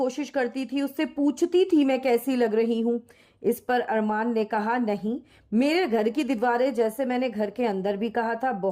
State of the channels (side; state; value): both; identical; correlation 1.00